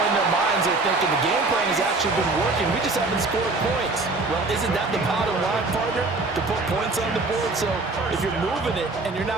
in their minds they're thinking the game plan has actually been working. We just haven't scored points. Well, isn't that the bottom line, partner? To put points on the board. So if you're moving it and you're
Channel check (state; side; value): quieter; left; 3.4 dB